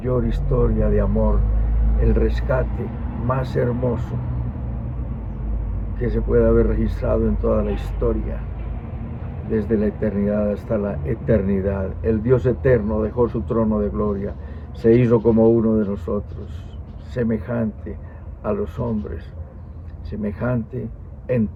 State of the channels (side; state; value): both; identical; correlation 1.00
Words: historia de amor, el rescate más hermoso que se puede haber registrado en toda la historia, desde la eternidad hasta la eternidad. El Dios eterno dejó su trono de gloria, se hizo como uno de nosotros, semejante a los hombres, semejante en